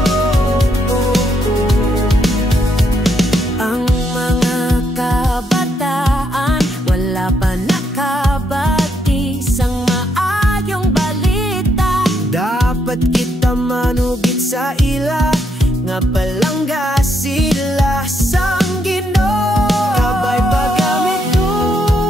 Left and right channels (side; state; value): both; normal; correlation 0.76